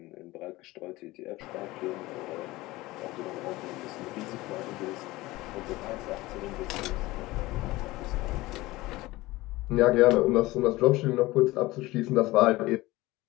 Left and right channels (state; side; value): quieter; right; 19.4 dB